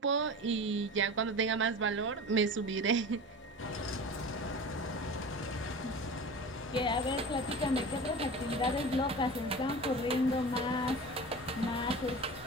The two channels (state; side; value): normal; both; correlation 0.33